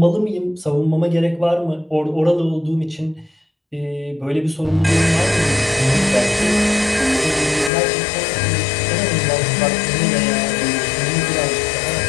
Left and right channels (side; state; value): right; drops out; at 7.7 s